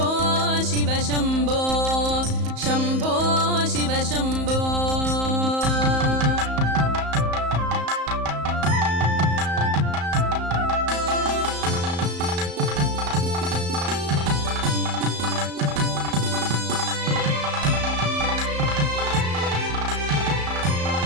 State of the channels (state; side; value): late; left; 34 ms